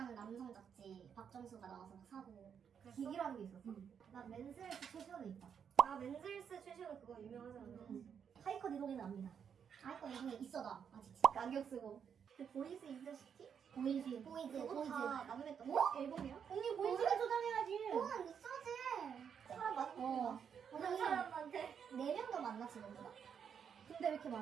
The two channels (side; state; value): left; quieter; 7.5 dB